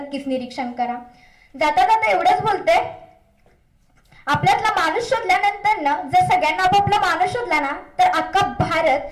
निरीक्षण करा. जाता जाता एवढंच बोलते, आपल्यातला माणूस शोधल्यानंतर ना, जर सगळ्यांना आपापला माणूस शोधला ना, तर अख्खा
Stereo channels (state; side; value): identical; both; correlation 1.00